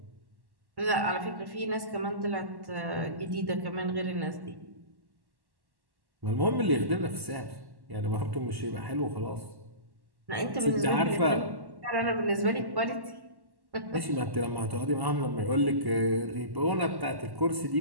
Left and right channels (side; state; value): left; late; 1.1 ms